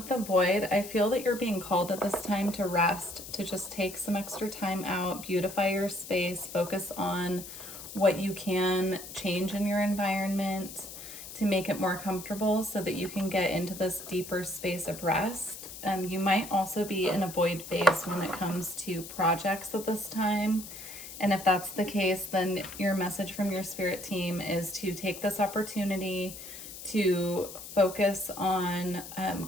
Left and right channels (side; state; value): left; noise; hiss, 12 dB below the sound